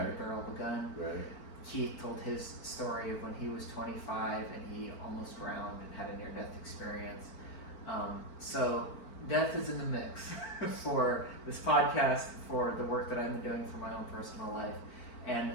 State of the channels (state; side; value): late; right; 4.4 ms